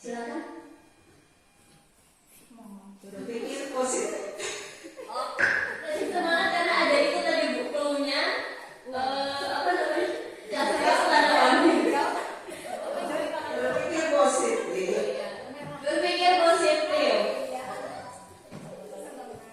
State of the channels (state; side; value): identical; both; correlation 1.00